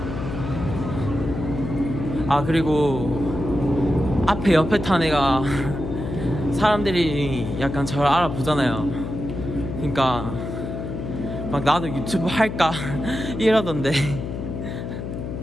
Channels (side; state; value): left; noise; hum, 6 dB below the sound